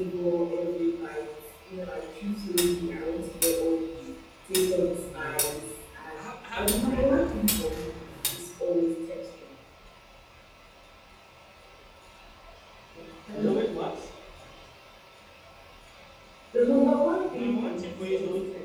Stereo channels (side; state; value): both; identical; correlation 1.00